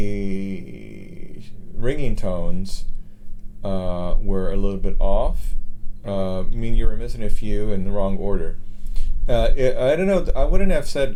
ringing tones were a little bit off. I mean, you were missing a few in the wrong order. I don't know. I wouldn't have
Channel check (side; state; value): both; identical; correlation 1.00